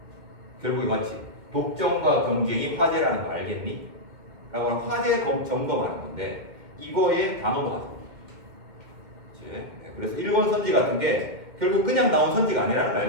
결국에 맞지? 독점과 경쟁이 화제라는 거 알겠니? 라고 하는 화제 점검하는 건데 이거에 다 넘어가죠. 네, 그래서 1번 선지 같은 게 결국 그냥 나온 선지가 아니라는 걸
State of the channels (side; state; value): left; late; 2.1 ms